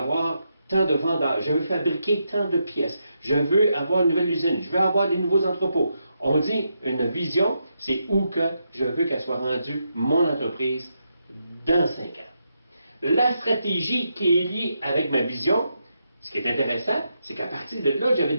tant de vendeurs. Je veux fabriquer tant de pièces. Je veux avoir une nouvelle usine. Je veux avoir des nouveaux entrepôts. On dit une vision, c'est où que je veux qu'elle soit rendue, mon entreprise, dans 5 ans. La stratégie qui est liée avec ma vision, ce qui est intéressant, c'est qu'à partir de là, j'avais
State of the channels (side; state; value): both; inverted; correlation -0.83